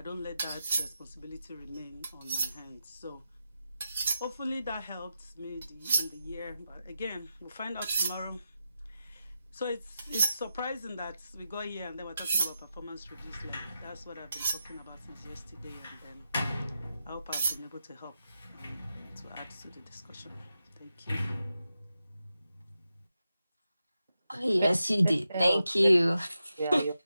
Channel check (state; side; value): inverted; both; correlation -0.89